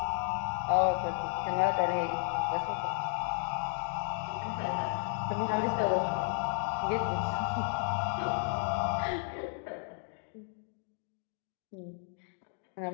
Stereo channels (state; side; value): silent; right; 56 dB below the other